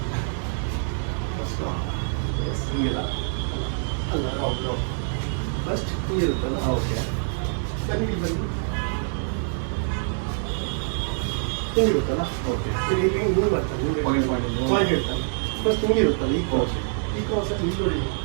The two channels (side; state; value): left; silent; digital silence